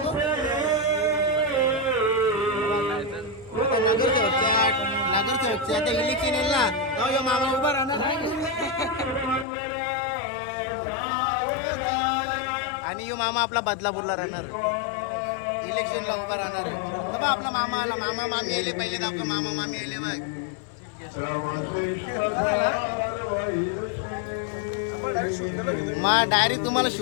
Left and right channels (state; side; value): drops out; right; at 9.5 s